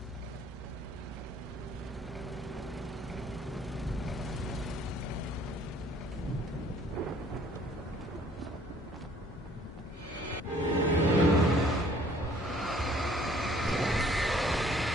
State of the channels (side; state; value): both; normal; correlation 0.58